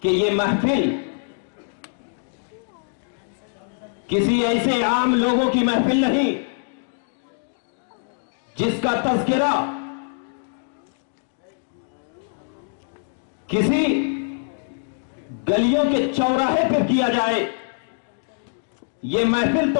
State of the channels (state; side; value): silent; right; 63 dB below the other